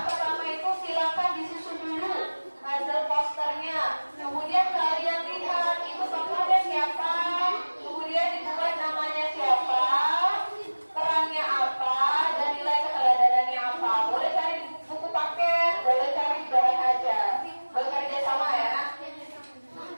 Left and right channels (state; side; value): inverted; both; correlation -1.00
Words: pertama itu silakan disusun dulu hasil posternya. Kemudian kalian lihat itu tokohnya siapa, kemudian dibuat namanya siapa, perannya apa, dan nilai keteladanan apa. Boleh cari buku paket, boleh cari bahan ajar. Bekerja sama ya.